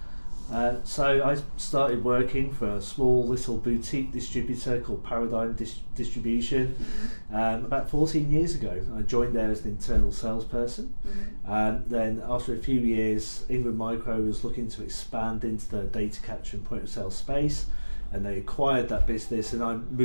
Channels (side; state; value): both; inverted; correlation -1.00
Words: So I started working for a small little boutique distributor called Paradigm Distribution about 14 years ago. I joined there as an internal salesperson. Then after a few years, Ingram Micro was looking to expand into the data capture and point of sale space, and they acquired that business, and I